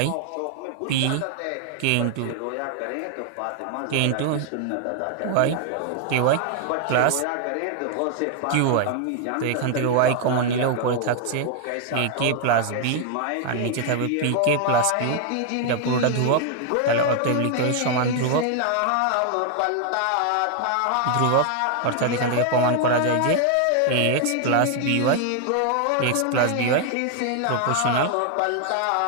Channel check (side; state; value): both; different; correlation 0.00